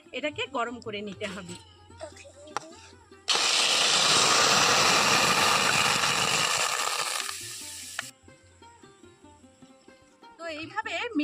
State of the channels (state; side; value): identical; both; correlation 1.00